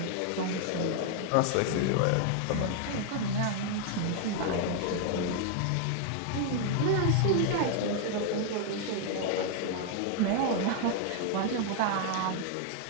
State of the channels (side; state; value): both; different; correlation 0.00